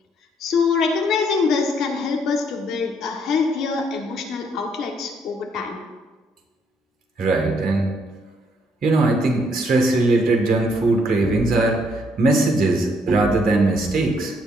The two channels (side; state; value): both; normal; correlation 0.70